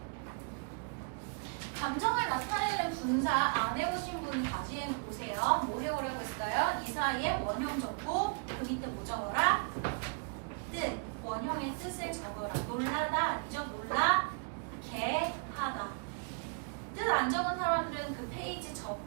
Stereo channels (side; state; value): left; quieter; 38.0 dB